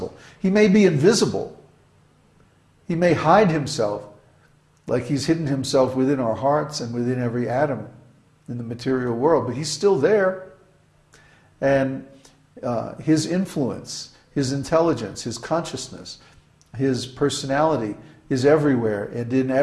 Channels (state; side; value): identical; both; correlation 1.00